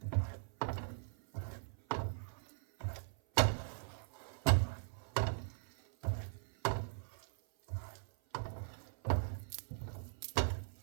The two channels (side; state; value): left; silent; 51 dB below the other